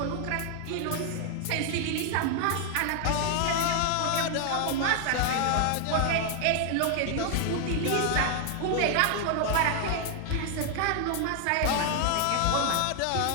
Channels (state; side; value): different; both; correlation 0.00